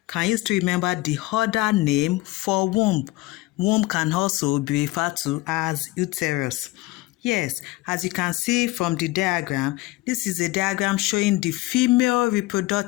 Can you still remember the other name for womb? Womb can also be referred to as uterus. Yes, as you can see from the diagram, this is a diagram showing the female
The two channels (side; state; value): right; quieter; 19.8 dB